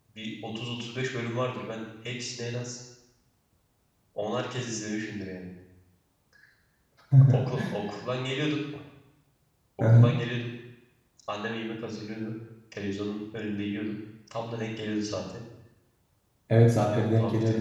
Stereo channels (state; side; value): identical; both; correlation 1.00